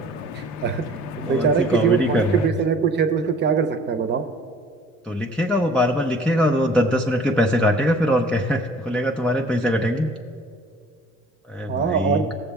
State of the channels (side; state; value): both; normal; correlation 0.50